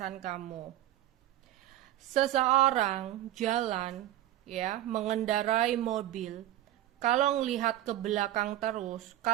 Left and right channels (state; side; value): quieter; left; 13.6 dB